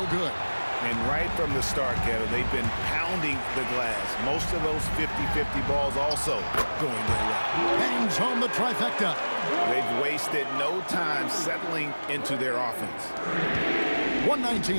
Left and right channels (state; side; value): inverted; both; correlation -1.00